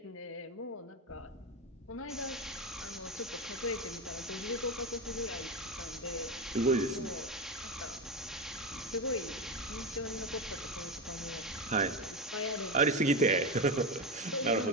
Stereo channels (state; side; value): normal; both; correlation 0.16